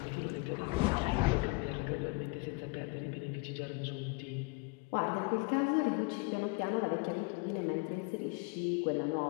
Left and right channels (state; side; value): quieter; right; 29.3 dB